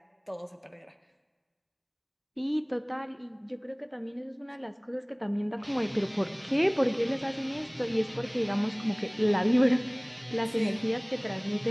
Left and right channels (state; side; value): identical; both; correlation 1.00